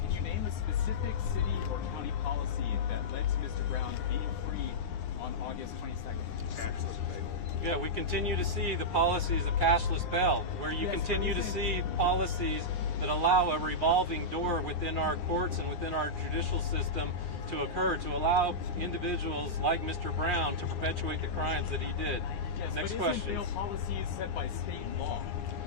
Can you name a specific city or county policy that led to Mr. Brown being free on August 22nd? Yeah, we continue to see the policies of cashless bail, where you continue to see policies that allow a revolving door within our courts and within our judicial system to occur, to allow individuals like Mr. Brown to perpetuate the crimes that he did. Yes, Next but question. isn't bail policy set by state law?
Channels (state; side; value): late; right; 9.7 ms